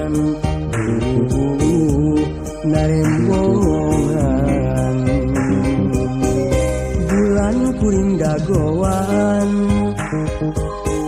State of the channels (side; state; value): both; identical; correlation 1.00